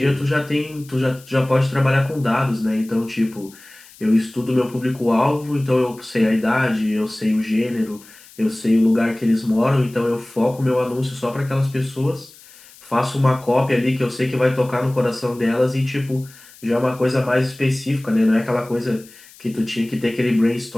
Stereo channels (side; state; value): left; noise; hiss, 23 dB below the sound